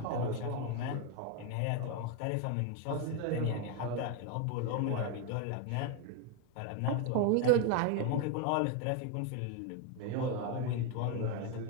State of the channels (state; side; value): different; both; correlation 0.01